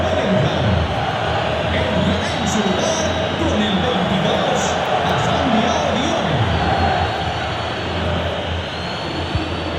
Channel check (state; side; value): identical; both; correlation 1.00